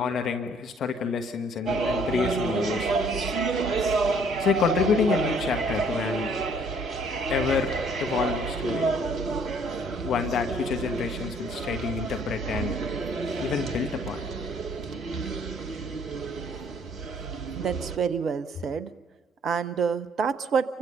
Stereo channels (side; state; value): both; normal; correlation 0.60